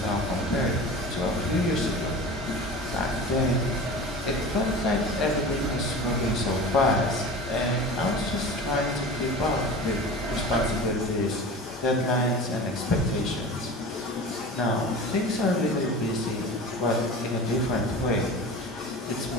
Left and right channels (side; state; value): both; normal; correlation 0.35